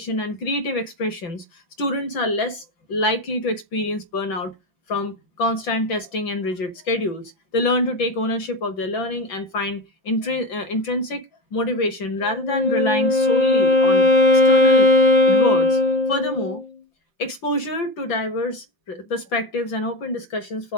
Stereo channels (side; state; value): right; late; 5.9 ms